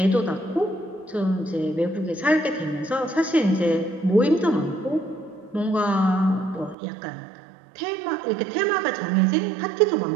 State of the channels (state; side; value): drops out; left; at 6.8 s